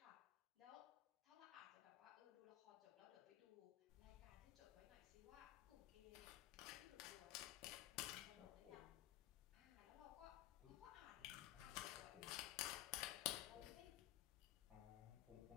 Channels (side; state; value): right; quieter; 14.5 dB